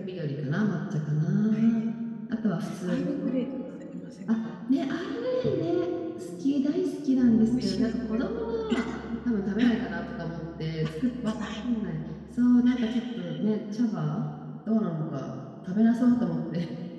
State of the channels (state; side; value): identical; both; correlation 1.00